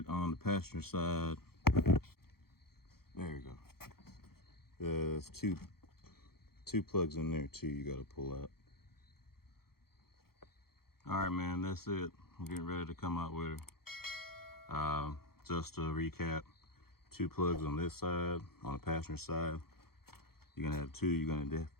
on the passenger side, there you go. There's two 2 plugs in there too you got to pull out. All right, man, that's it. I'm getting ready to come out with her. Just to recap, 2 plugs on this side, on the passenger side. You're gonna have 2. You're gonna have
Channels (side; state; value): right; late; 0.94 ms